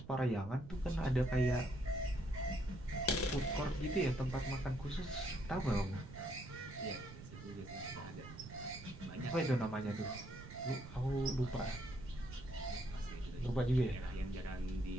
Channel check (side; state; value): right; noise; rumble, 14 dB below the sound